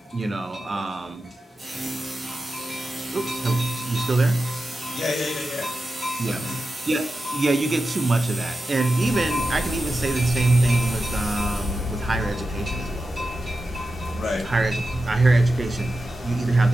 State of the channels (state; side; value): normal; both; correlation 0.91